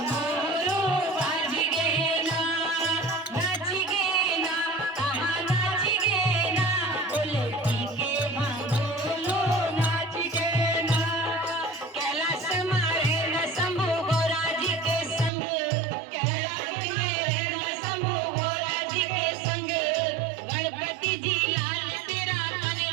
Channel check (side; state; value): left; drops out; at 15.3 s